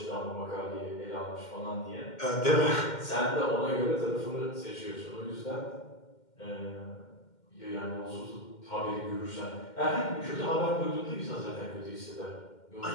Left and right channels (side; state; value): right; late; 2.1 ms